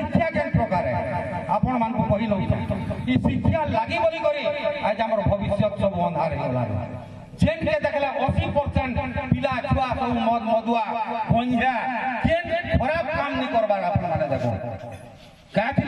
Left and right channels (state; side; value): identical; both; correlation 1.00